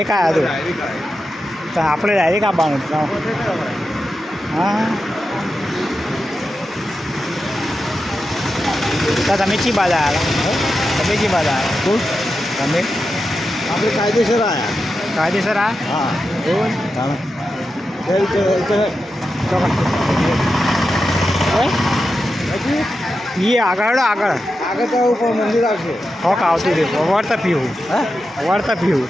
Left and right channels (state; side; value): normal; both; correlation 0.90